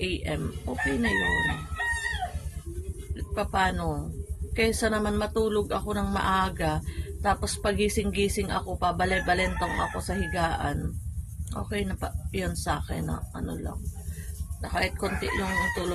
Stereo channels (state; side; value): identical; both; correlation 1.00